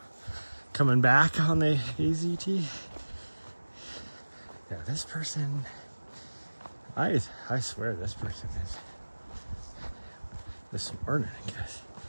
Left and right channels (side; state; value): both; inverted; correlation -1.00